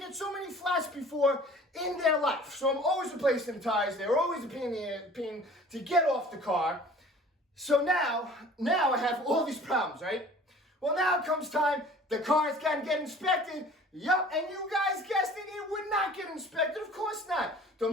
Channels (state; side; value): normal; both; correlation 0.47